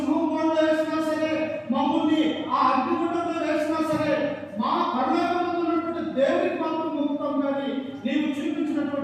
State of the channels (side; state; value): both; identical; correlation 1.00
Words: బోన్లో వేసినా సరే, మమ్మల్ని ఆ అగ్నిగుండంలో వేసినా సరే, మా పరలోకమందు ఉన్నటువంటి దేవునికి మాత్రం మొక్కుతాం, కానీ నీవు